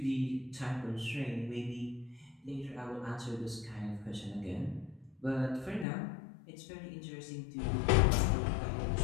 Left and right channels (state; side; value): drops out; right; at 5.9 s